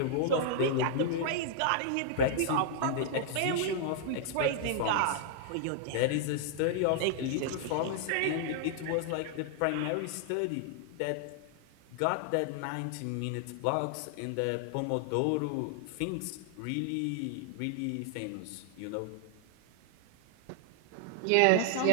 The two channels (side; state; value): both; different; correlation 0.00